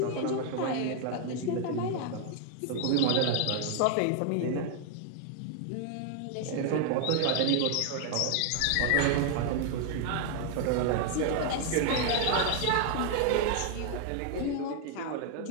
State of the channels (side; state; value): both; different; correlation 0.00